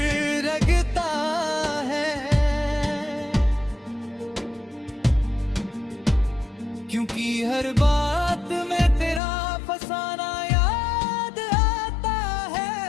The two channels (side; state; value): right; drops out; at 9.2 s